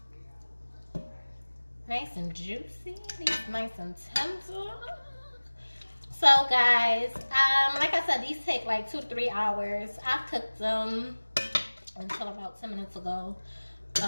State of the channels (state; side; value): inverted; both; correlation -1.00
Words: Nice and juicy. These nice and tender. So guys, like I said, these take like 2 to 3 hours. I cooked them until about 10 minutes ago.